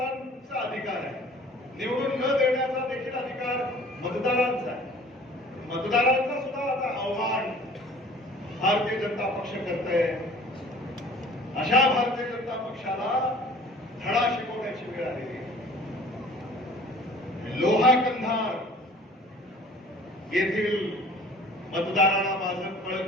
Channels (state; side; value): normal; both; correlation 0.49